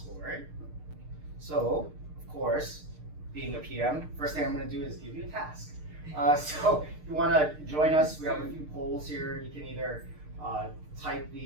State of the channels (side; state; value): left; late; 6.6 ms